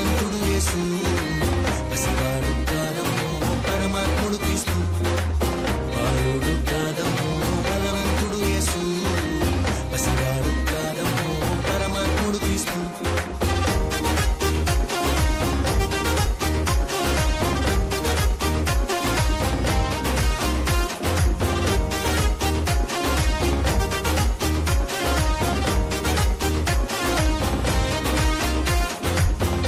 యేసు పసివాడు కాదమ్మో పరమాత్ముడు క్రీస్తు బాలుడు కాదమ్మో బలవంతుడు యేసు పసివాడు కాదమ్మో పరమాత్ముడు క్రీస్తు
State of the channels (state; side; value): identical; both; correlation 1.00